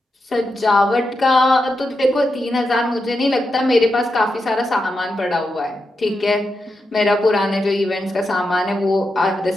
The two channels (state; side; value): normal; both; correlation 0.87